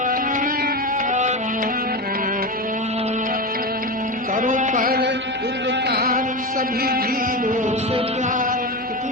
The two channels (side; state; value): both; normal; correlation 0.20